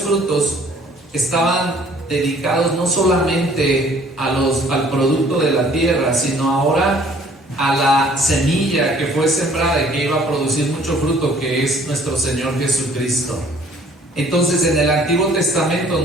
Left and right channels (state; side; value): normal; both; correlation 0.57